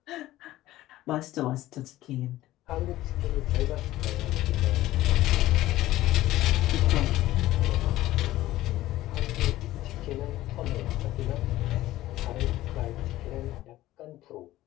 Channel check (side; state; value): right; quieter; 15.6 dB